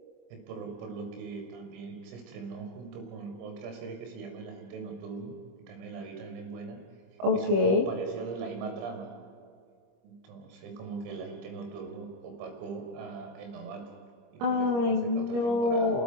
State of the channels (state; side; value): late; left; 25 ms